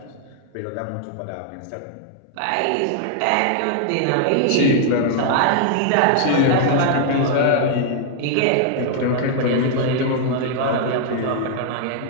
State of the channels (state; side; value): different; both; correlation -0.01